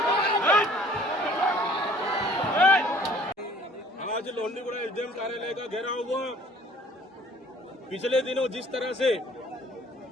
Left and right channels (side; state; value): both; normal; correlation 0.54